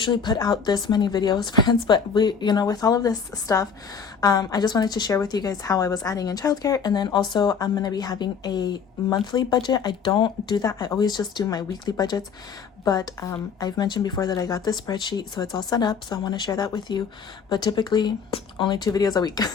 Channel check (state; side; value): quieter; right; 6.3 dB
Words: put out this many videos, friends, but with all of this stuff, I just wanted to share with you guys how I was adding in childcare. And then also I'm going to be having a monthly budget. I don't do that. I always just do my weekly budgets. But I've mentioned before that I got this spreadsheet, so it's all set up. So I want to share that with you. But typically only 2 videos a week.